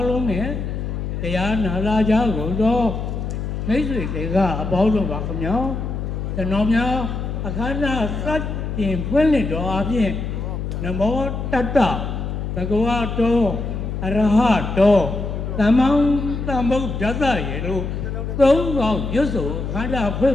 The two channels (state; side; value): noise; left; hum, 4 dB below the sound